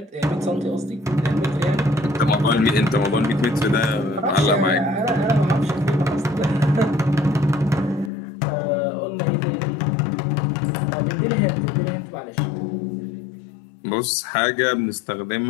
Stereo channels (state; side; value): drops out; right; at 8.1 s